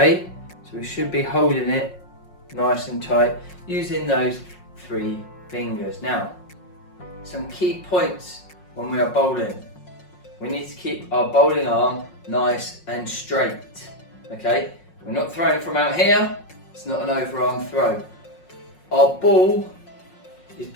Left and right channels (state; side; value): late; right; 5.5 ms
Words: So we should be holding it nice and tight using those 3 fingers. Now, some key points when we are bowling. We need to keep our bowling arm nice and straight, okay? We're not throwing from out here, it's not an overarm throw. Our ball is